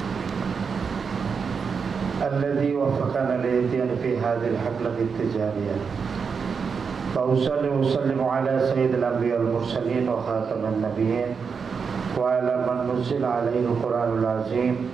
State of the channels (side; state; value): left; quieter; 5.8 dB